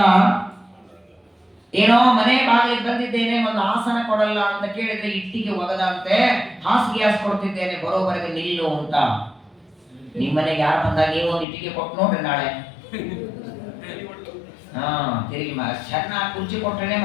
ಏನೋ ಮನೆ ಬಾಗಿಲಿಗೆ ಬಂದಿದ್ದೇನೆ, ಒಂದು ಆಸನ ಕೊಡಲ್ಲ ಅಂತ ಕೇಳಿದ್ರೆ ಇಟ್ಟಿಗೆ ಒಗದಂತೆ, ಹಾಸಿಗೆ ಹಾಸ್ಕೊಡ್ತಿದ್ದೇನೆ, ಬರೋವರೆಗೆ ನಿಲ್ಲು ಅಂತ. ನಿಮ್ಮನೆಗೆ ಯಾರು ಬಂದಾಗ ನೀವು ಒಂದು ಇಟ್ಟಿಗೆ ಕೊಟ್ಟು ನೋಡ್ರಿ ನಾಳೆ. ತಿರುಗಿ ಚೆನ್ನಾಗಿ ಕುರ್ಚಿ ಕೊಟ್ಟರೆ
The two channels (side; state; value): right; drops out; at 11.5 s